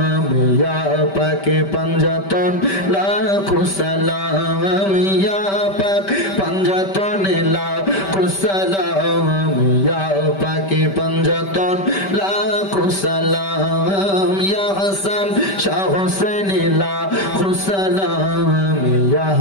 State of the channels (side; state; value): right; late; 5.1 ms